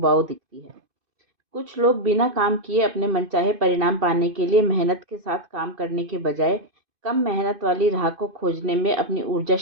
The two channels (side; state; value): left; late; 2.5 ms